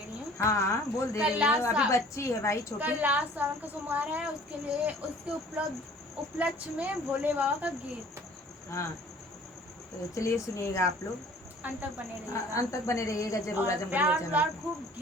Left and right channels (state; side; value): normal; both; correlation 0.51